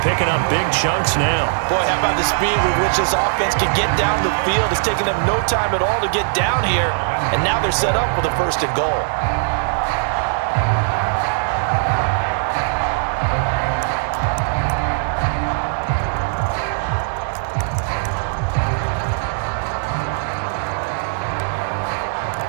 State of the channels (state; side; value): silent; left; digital silence